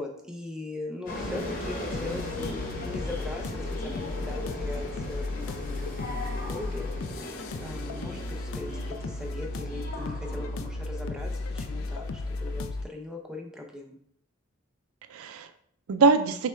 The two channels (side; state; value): both; normal; correlation 0.27